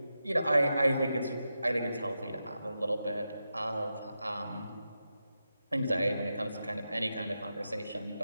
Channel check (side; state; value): both; inverted; correlation -0.88